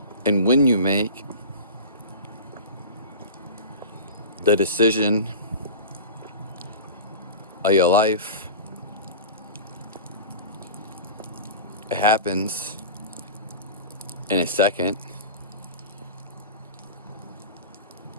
and when you make the decision of your life, it happens in a second.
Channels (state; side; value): inverted; both; correlation -0.32